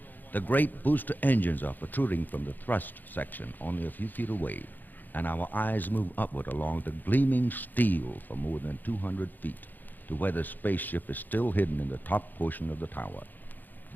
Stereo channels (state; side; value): late; right; 0.087 ms